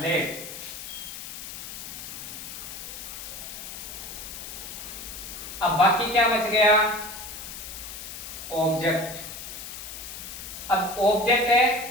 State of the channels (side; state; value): left; noise; hiss, 9 dB below the sound